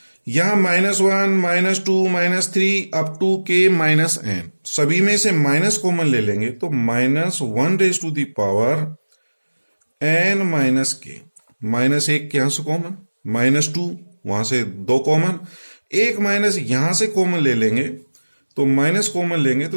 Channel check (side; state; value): both; inverted; correlation -1.00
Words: यहां -1 -2 -3 up to k minus n, सभी में से माइनस कॉमन ले लेंगे, तो -1 raise to the power n minus k। -1 यहां से कॉमन, -2 वहां से 2 कॉमन, एक माइनस यहां से कॉमन ले लेंगे, तो माइनस कॉमन लेंगे